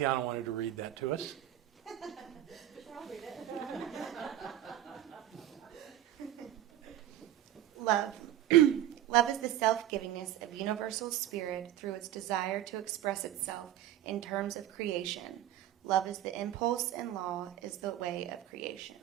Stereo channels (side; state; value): left; quieter; 12.4 dB